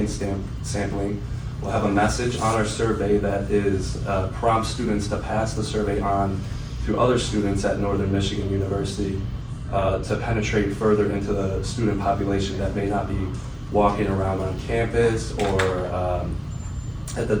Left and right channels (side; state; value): both; identical; correlation 1.00